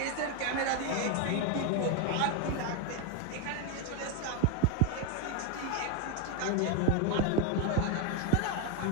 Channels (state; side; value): different; both; correlation 0.01